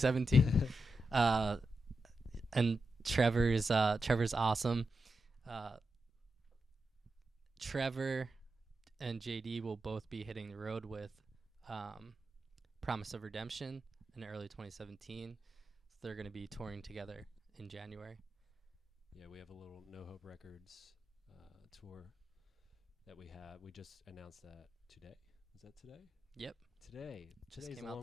And Trevor's awesome. Trevor and JD will both be hitting the road with Promise of Redemption in early 2017. So they're going to be touring together in January. Yeah, we have a little No Hope Records tour that we have. We just announced that today. Is that today? Yep. Today. Just Today's came a out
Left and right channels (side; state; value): both; normal; correlation 0.88